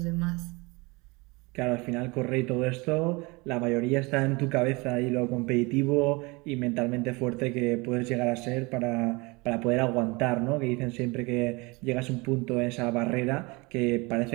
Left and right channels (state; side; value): quieter; left; 25.9 dB